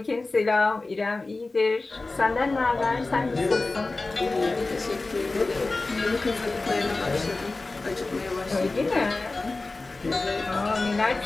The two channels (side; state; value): right; quieter; 3.4 dB